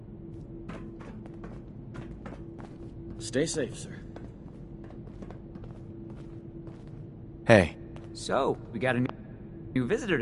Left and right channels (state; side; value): identical; both; correlation 1.00